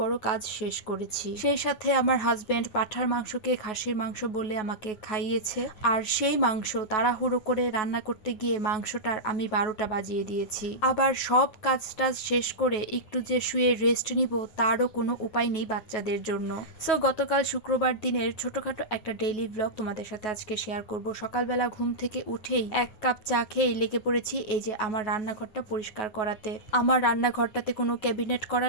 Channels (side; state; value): right; late; 9.7 ms